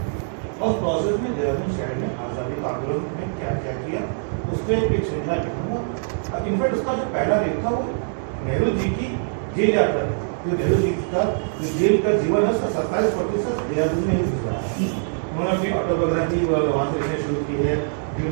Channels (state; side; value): silent; left; digital silence